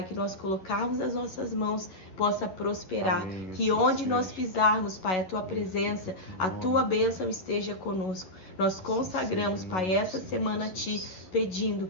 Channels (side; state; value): right; late; 11 ms